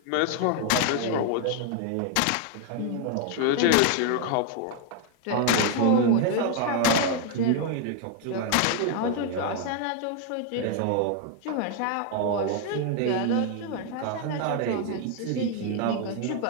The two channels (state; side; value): different; both; correlation 0.01